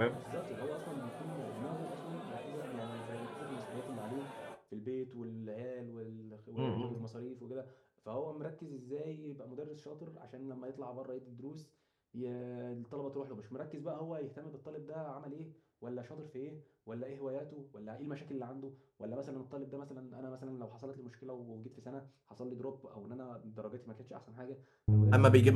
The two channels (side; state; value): both; identical; correlation 1.00